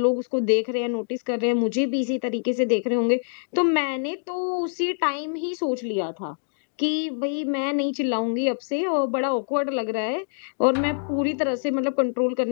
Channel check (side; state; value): right; silent; digital silence